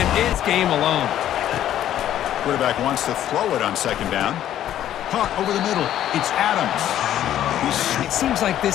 it's game alone. Quarterback wants to throw it on 2nd down. Caught over the middle. It's Adams. It seems like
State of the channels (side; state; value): right; quieter; 11.6 dB